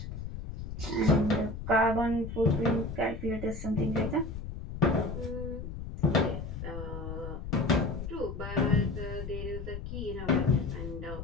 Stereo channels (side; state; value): left; noise; rumble, 8 dB below the sound